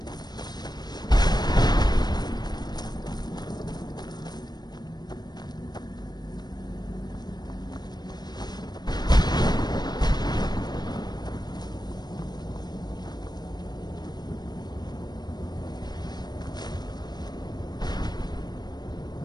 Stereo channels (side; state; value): right; late; 0.20 ms